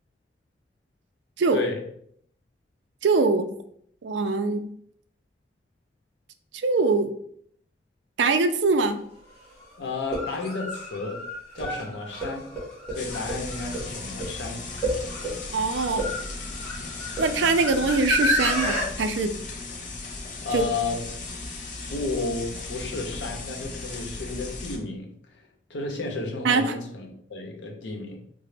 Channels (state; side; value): normal; both; correlation 0.12